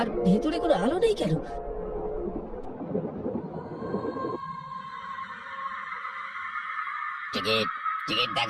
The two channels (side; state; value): both; identical; correlation 1.00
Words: আর ভেতরে কোনো আলো নেই কেন? টিকিট টিকিট